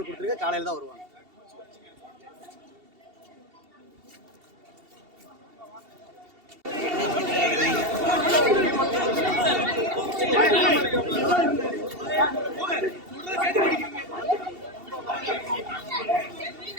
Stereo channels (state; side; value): late; left; 2.7 ms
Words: கொடுத்துருக்கு, காலையில தான் வருவாங்க.